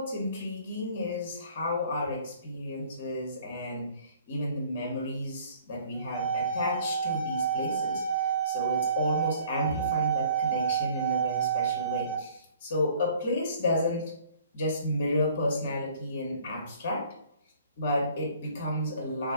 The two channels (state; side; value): inverted; both; correlation -0.55